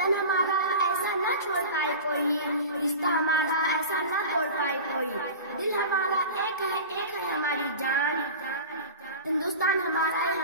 हमारा ऐसा न छोड़ पाए कोई, रिश्ता हमारा ऐसा न तोड़ पाए कोई। दिल हमारा एक है हमारी जान। हिंदुस्तान हमारा है,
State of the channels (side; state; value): both; inverted; correlation -0.33